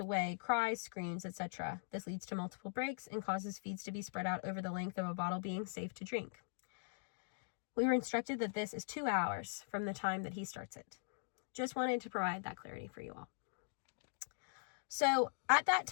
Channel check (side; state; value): right; silent; digital silence